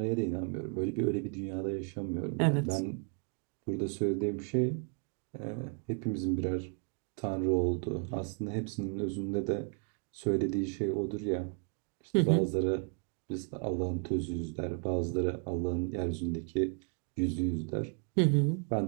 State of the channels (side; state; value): left; quieter; 39.9 dB